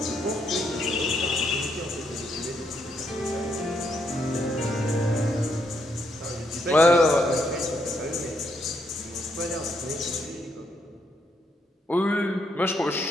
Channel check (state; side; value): normal; both; correlation 0.76